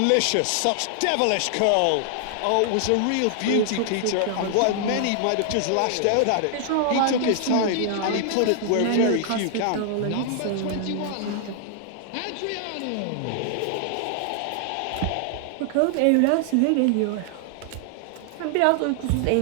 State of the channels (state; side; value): different; both; correlation 0.00